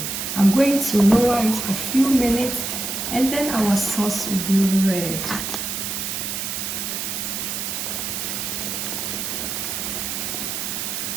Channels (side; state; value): right; noise; hiss, 3 dB below the sound